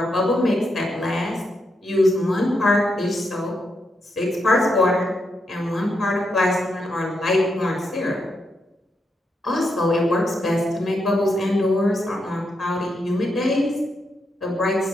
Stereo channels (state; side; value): normal; both; correlation 0.82